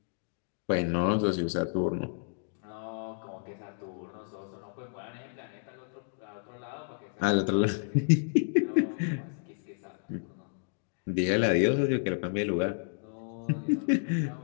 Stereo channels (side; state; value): right; silent; digital silence